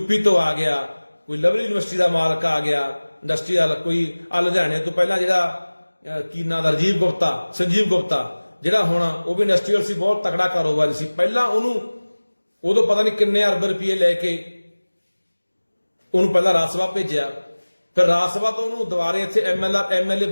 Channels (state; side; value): inverted; both; correlation -1.00